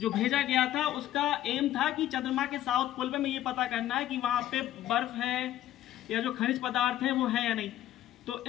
भेजा गया था उसका एम था कि चंद्रमा के साउथ पोल पे में ये पता करना है कि वहां पे बर्फ है या जो खनिज पदार्थ है वो है या नहीं। तो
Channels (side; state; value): right; quieter; 12.9 dB